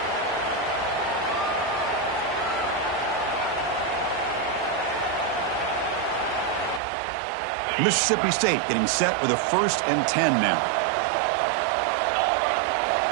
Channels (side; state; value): left; drops out; at 6.8 s